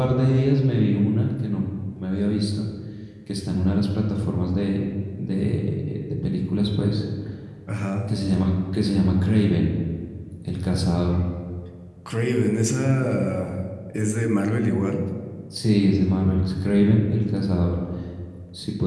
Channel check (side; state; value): both; identical; correlation 1.00